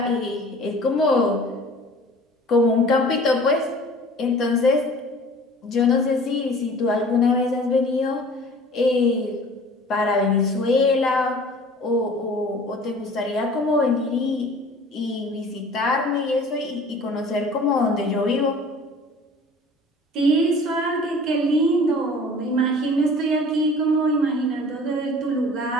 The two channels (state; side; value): normal; both; correlation 0.46